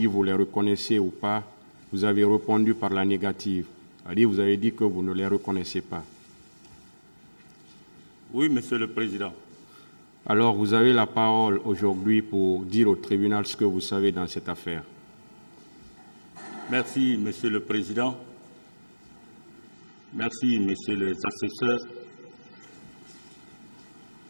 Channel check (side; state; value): both; inverted; correlation -1.00